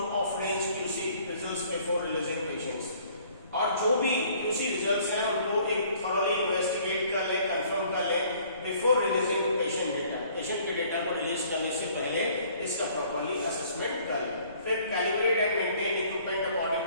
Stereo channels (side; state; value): both; inverted; correlation -0.58